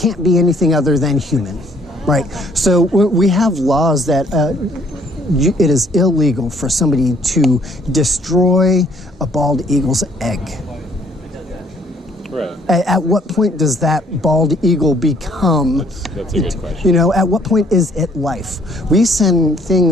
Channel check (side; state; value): both; normal; correlation 0.63